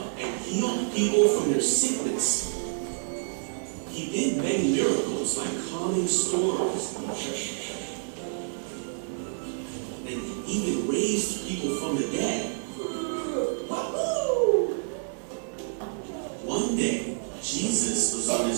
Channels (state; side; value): silent; left; digital silence